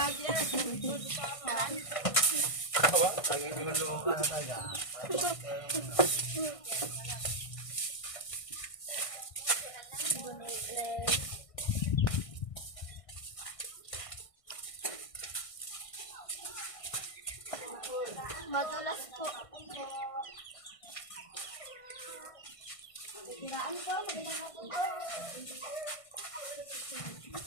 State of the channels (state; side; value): late; right; 1.6 ms